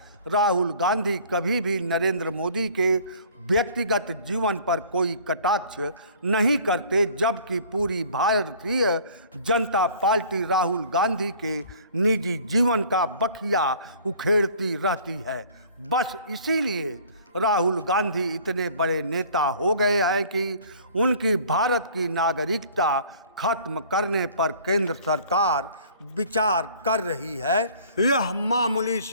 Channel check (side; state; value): both; inverted; correlation -0.51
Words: राहुल गांधी कभी भी नरेंद्र मोदी के व्यक्तिगत जीवन पर कोई कटाक्ष नहीं करते, जबकि पूरी भारतीय जनता पार्टी राहुल गांधी के निजी जीवन का बखिया उखेड़ती रहती है। बस इसीलिए राहुल गांधी इतने बड़े नेता हो गए हैं कि उनकी भारत की नागरिकता खत्म करने पर केंद्र सरकार विचार कर रही है। यह मामूली